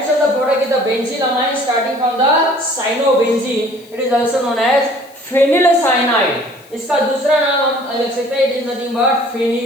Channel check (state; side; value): noise; left; hiss, 27 dB below the sound